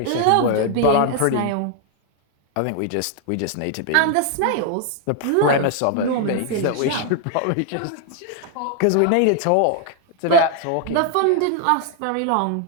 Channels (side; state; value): both; different; correlation 0.00